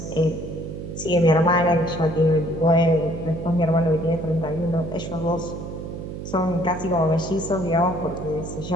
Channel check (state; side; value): noise; right; hum, 8 dB below the sound